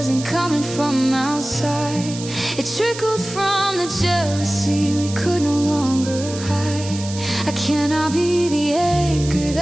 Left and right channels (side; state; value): right; noise; hiss, 12 dB below the sound